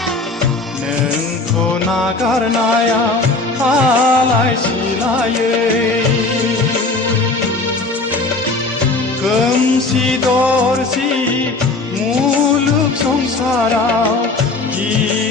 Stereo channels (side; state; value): right; quieter; 3.4 dB